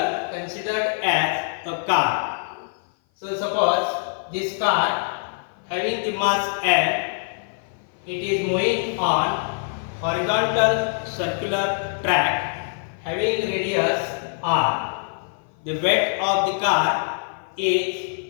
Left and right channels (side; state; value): right; silent; 56 dB below the other